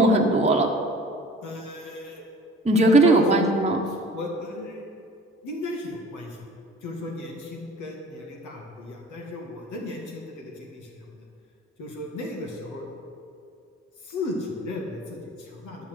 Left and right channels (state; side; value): normal; both; correlation 0.46